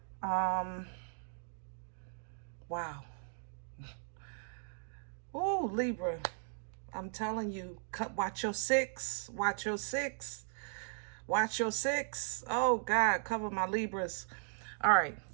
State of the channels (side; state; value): left; silent; digital silence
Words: Wow. Ooh, Libra. I'm telling you, watch your six. Watch your six. Watch your six. Oh, God, cover my Libras. All right.